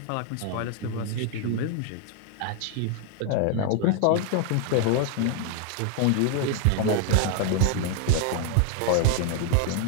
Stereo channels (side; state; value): both; different; correlation 0.00